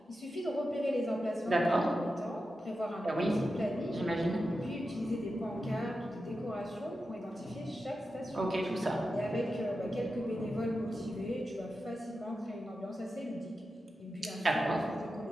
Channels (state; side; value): normal; both; correlation 0.91